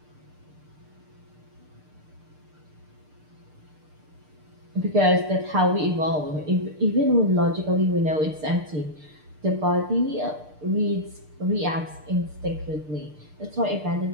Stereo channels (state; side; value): late; left; 6.6 ms